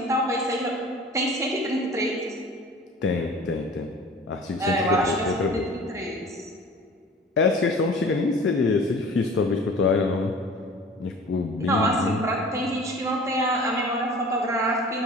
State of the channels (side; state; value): both; normal; correlation 0.44